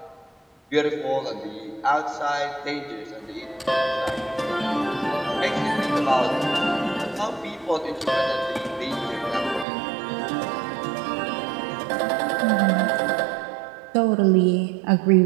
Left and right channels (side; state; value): left; drops out; at 9.7 s